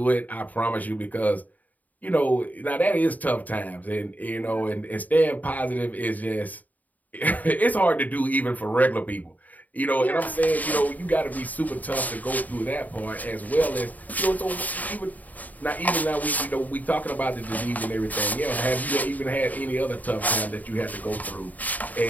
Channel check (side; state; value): right; late; 0.078 ms